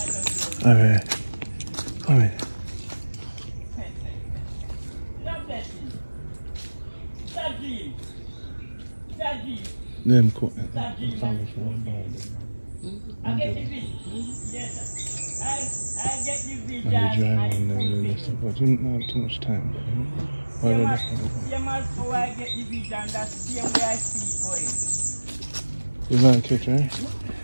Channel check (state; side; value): inverted; both; correlation -1.00